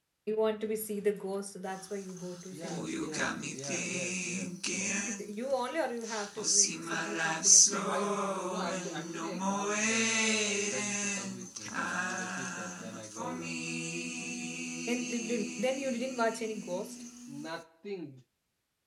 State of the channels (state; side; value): identical; both; correlation 1.00